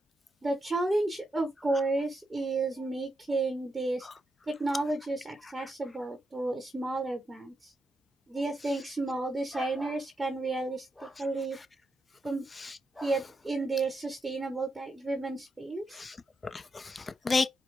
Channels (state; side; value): normal; both; correlation 0.84